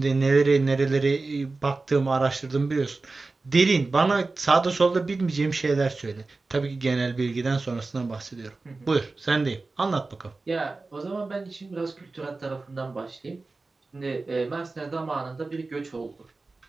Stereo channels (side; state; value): left; quieter; 3.6 dB